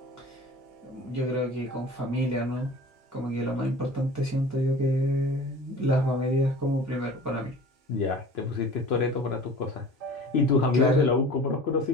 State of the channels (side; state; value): both; normal; correlation 0.41